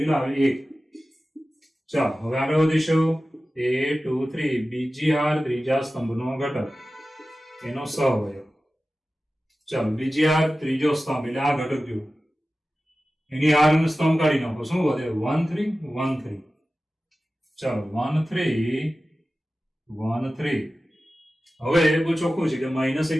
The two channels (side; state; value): both; normal; correlation 0.95